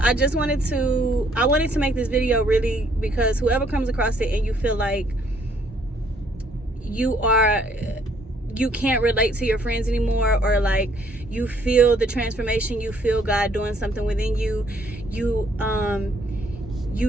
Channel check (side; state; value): both; normal; correlation 0.65